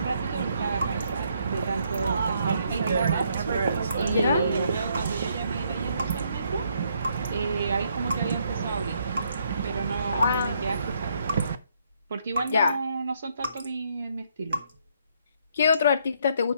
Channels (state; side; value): inverted; both; correlation -0.71